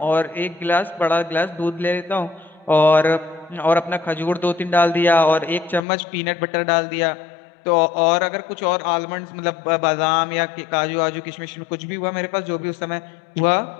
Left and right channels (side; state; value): right; drops out; at 5.8 s